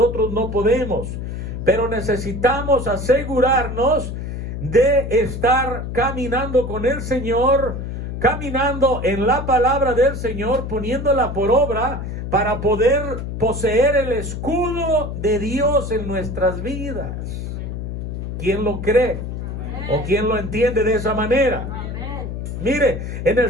no podemos. Pero necesitamos asegurarnos de estar caminando con el Señor, caminando en la palabra del Señor, poniéndola por obra para poder poseer el escudo de Dios en nuestras vidas. ¿Quién lo cree? ¿O quién lo entiende de esa manera? Mire, en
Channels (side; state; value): left; noise; hum, 6 dB below the sound